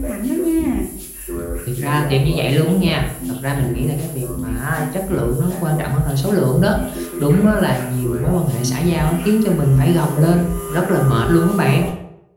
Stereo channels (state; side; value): identical; both; correlation 1.00